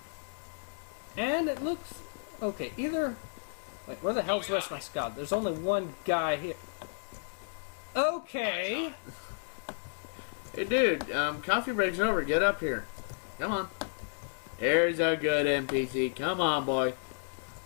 And it looks... Okay, either... Wait, where the hell's the rest of my squad? There's only one guy here. Okay. hey dude, coffee break's over. Get up here. Come on. There's a good NPC. Come on, boy.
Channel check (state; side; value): silent; right; digital silence